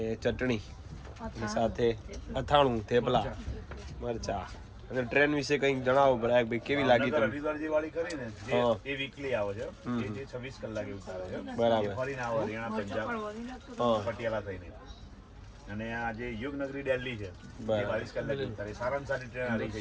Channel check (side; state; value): both; identical; correlation 1.00